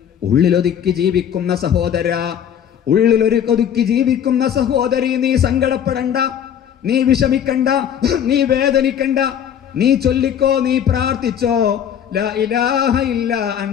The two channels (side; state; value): right; quieter; 9.1 dB